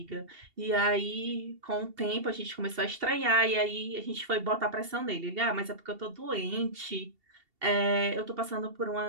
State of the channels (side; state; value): left; late; 2.7 ms